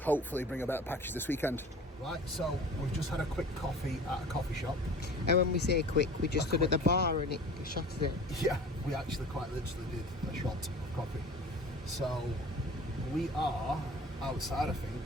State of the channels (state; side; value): normal; both; correlation 0.42